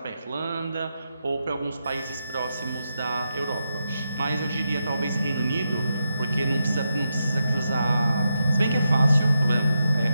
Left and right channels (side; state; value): both; inverted; correlation -0.86